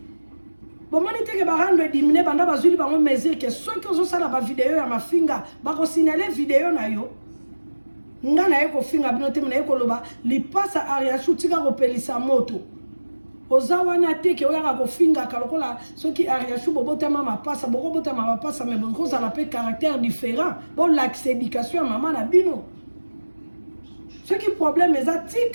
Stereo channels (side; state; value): both; inverted; correlation -1.00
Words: bomoni teke barando edimine banda bazwili bango mesure ke soki ozosala bavideo ya mafinga bakosignale video na yo nga na ye kofinga bino te na ye koloba lipasa Ariashu tika kopelisa moto oza wana teke oyaka kofingaka lokola soki Ariashu bobotama mapasa bokobotama mapasa me bokozala mpe caractère différent bolakisa éducation ya mama na bino soki problème eza